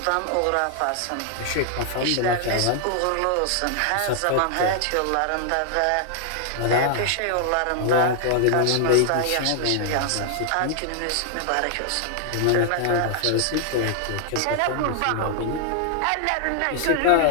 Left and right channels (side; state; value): both; different; correlation 0.00